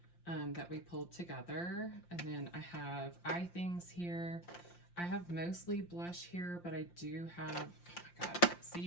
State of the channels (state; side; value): late; right; 5.7 ms